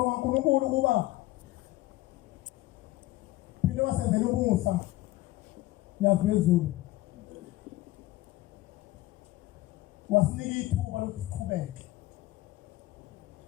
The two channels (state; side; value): quieter; right; 17.5 dB